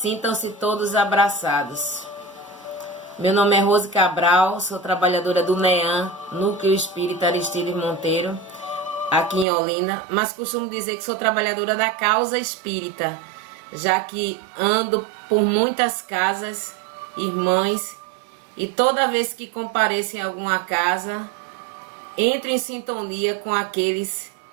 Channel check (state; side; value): drops out; left; at 9.5 s